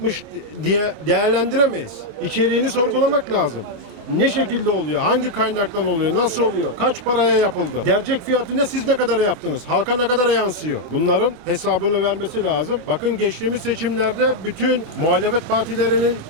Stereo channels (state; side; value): late; left; 26 ms